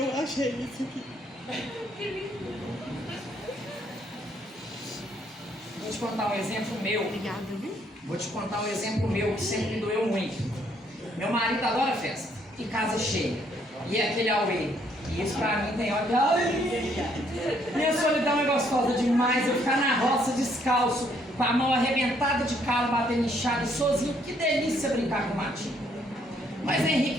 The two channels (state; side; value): normal; both; correlation 0.68